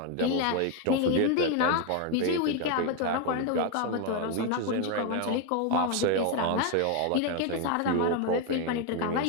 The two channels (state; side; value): different; both; correlation 0.01